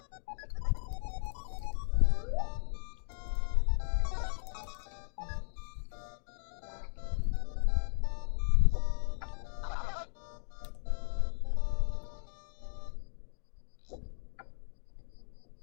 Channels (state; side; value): silent; right; digital silence